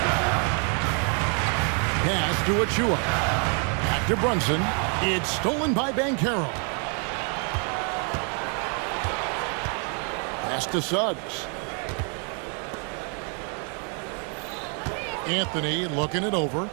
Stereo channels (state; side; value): quieter; left; 39.4 dB